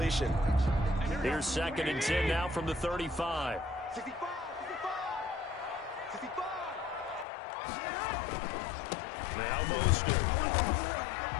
Here's 2nd and 10 now from the 35. Now Mostert.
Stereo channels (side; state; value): right; drops out; at 7.2 s